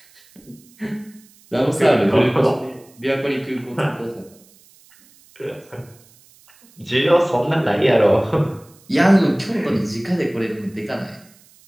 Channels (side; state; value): right; noise; hiss, 28 dB below the sound